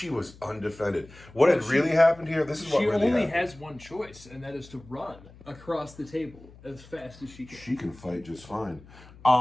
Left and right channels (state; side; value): noise; left; hum, 22 dB below the sound